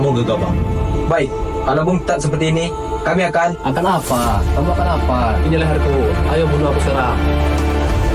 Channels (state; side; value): identical; both; correlation 1.00